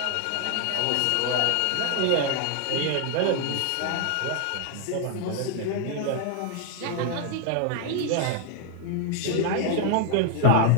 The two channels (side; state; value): both; different; correlation 0.00